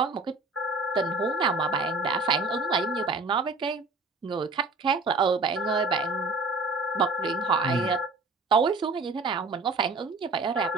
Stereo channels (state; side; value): quieter; left; 3.4 dB